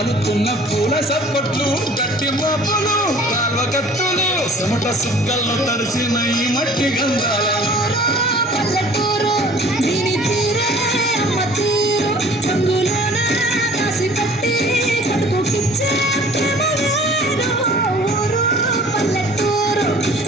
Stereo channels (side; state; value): both; normal; correlation 0.49